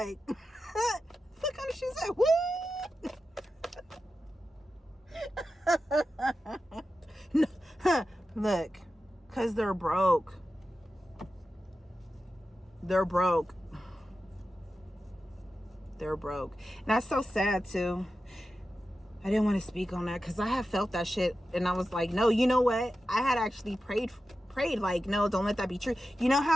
what kind of shit is that? What? No, look, cause they're broke. They're broke. And that's so sad too. I didn't want to speak on that because I have felt that shit, and I was like, no, you know what? I had actually prayed like, no, don't let that be true. You know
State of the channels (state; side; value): normal; both; correlation 0.92